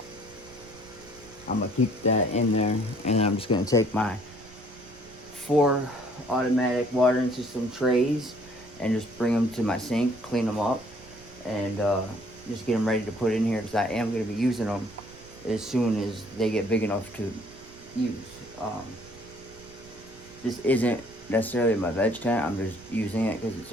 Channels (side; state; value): right; noise; rumble, 22 dB below the sound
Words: I'm gonna keep that in there, and I'm just gonna take my 4 automatic watering system trays and just bring them to my sink, clean them up, and just get them ready to put in here, because I am going to be using them as soon as they get big enough to use. This isn't necessarily my veg tent. I'm just using it because it's